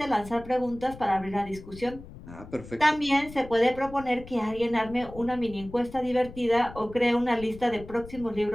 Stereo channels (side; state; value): left; noise; rumble, 16 dB below the sound